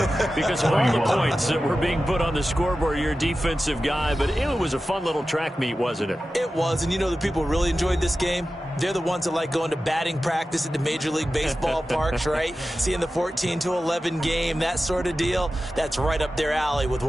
because of all the points that were being put on the scoreboard. You're a defensive guy, but it was a fun little track meet, wasn't it? It was, and you know the people really enjoyed this game? They're the ones that like going to batting practice at the Major League Baseball parks, right? Seeing the 14-11 game, that sort of deal. That's right up their alley with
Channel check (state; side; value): normal; both; correlation 0.94